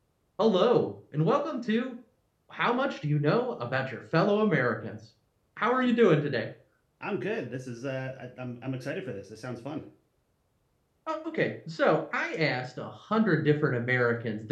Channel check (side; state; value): both; identical; correlation 1.00